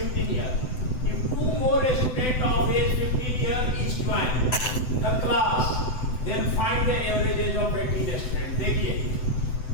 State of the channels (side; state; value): right; late; 7.9 ms